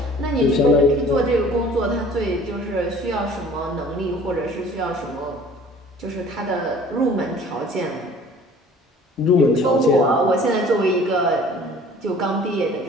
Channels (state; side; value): normal; both; correlation 0.49